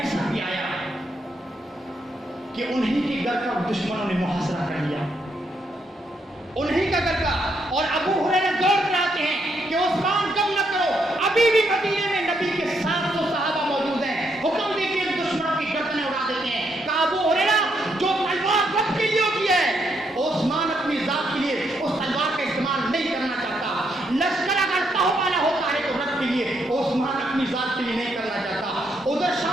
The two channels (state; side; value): normal; both; correlation 0.76